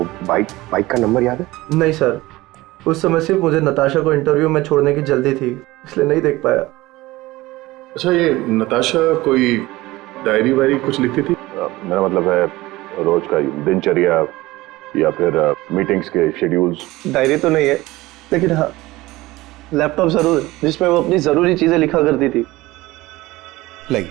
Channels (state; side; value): quieter; left; 19.1 dB